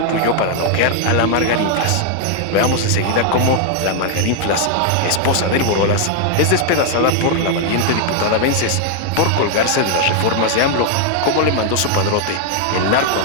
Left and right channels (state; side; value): different; both; correlation 0.00